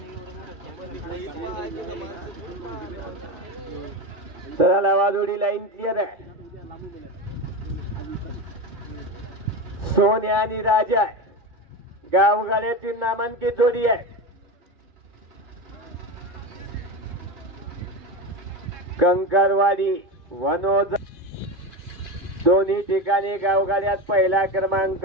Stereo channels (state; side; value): late; left; 2.3 ms